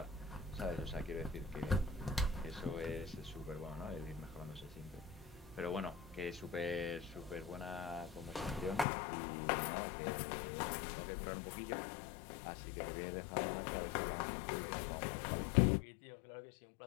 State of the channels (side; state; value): right; drops out; at 8.8 s